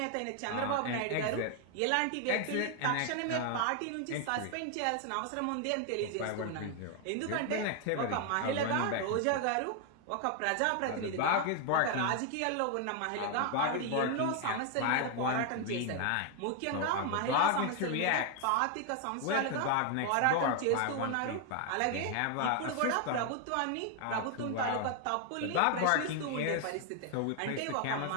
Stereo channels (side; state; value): both; different; correlation 0.01